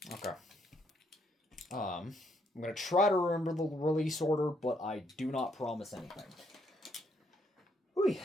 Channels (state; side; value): normal; both; correlation 0.72